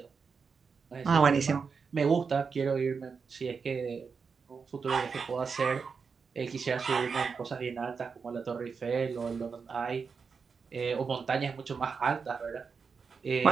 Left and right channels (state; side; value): quieter; left; 5.5 dB